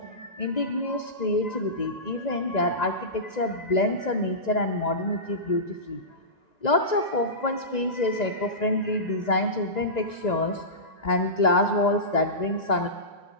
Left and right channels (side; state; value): right; late; 1.9 ms